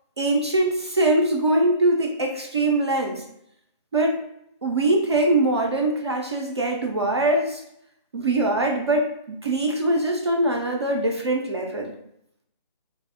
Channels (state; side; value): inverted; both; correlation -0.36